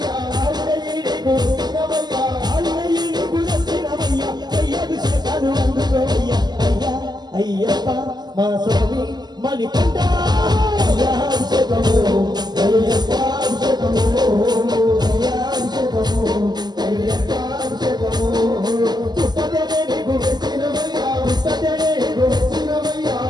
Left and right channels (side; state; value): left; late; 0.20 ms